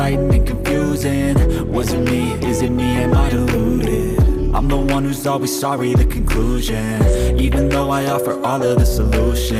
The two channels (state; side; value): identical; both; correlation 1.00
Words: and confusing. Was it me? Is it me? Am I deluded? I'm the one who's always sorry, the conclusion, even though I offer all of the